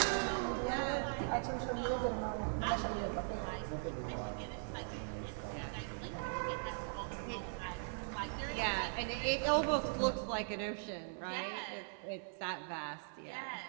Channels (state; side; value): silent; left; digital silence